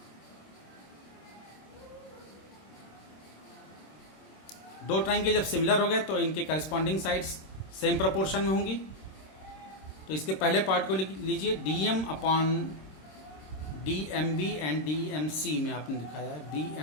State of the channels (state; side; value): late; right; 26 ms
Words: दो ट्रायंगल जब सिमिलर हो गए तो इनके करस्पॉन्डिंग साइड्स सेम प्रोपोर्शन में होंगी। तो इसके पहले पार्ट को लीजिए, DM upon DMB and DMC में आपने दिखाया है